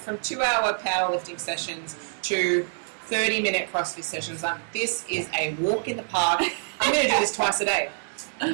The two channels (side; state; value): left; silent; 61 dB below the other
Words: 2-hour powerlifting sessions to 30-minute CrossFit sessions. This is a walk in the park. I'm going to do this twice a day.